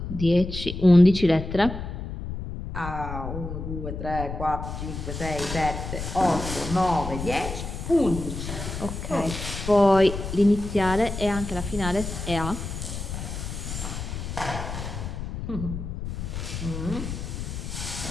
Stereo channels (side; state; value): left; noise; rumble, 6 dB below the sound